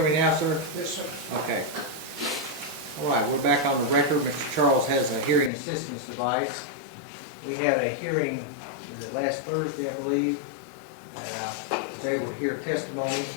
me now, sir? Yes, sir. Okay. All right, we're back on the record. Mr. Charles has a hearing assistance device. We had a hearing, was it last Thursday, I believe, and I was able to hear testimony,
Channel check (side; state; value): right; drops out; at 5.5 s